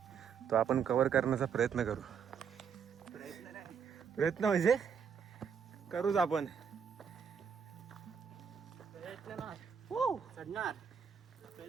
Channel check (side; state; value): left; quieter; 6.9 dB